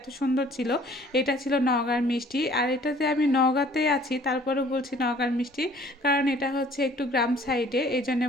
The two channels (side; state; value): both; normal; correlation 0.55